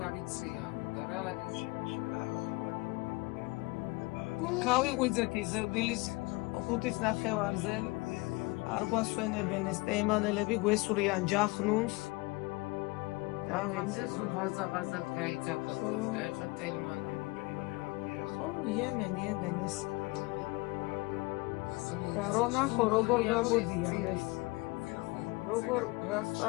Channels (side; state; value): right; quieter; 24.5 dB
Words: გავიღვიძეთ იზრდილის 5-ის ნახევარზე. არ გვასვენებენ ეს ტეიმანელები, გვესურიან ჯახნუნს. ამაზე სულ ღაზაღაზად გაიძახოთ ეხა ტელმანი. ხო, იემენი ეს. და რონახო როგორ გამოდიან ეს. როგორ რას